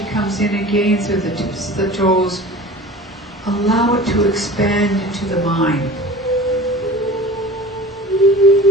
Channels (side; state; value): both; normal; correlation 0.40